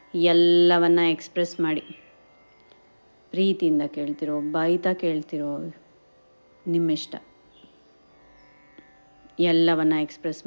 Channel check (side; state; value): both; inverted; correlation -1.00